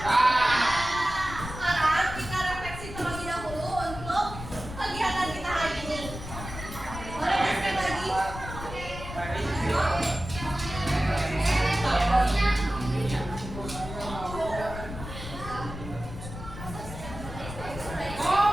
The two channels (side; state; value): left; noise; rumble, 10 dB below the sound